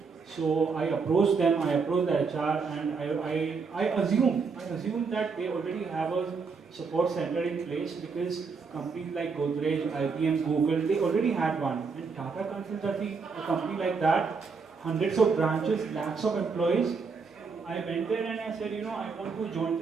So I approached them, I approached the HR, and I assume that they already have a support center in place because companies like Godrej, IBM, Google, they already had one. And Tata Consultancy, a company like that, hundreds of branches, lakhs of employees. I went there and I said, I want to join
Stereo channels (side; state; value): left; quieter; 5.0 dB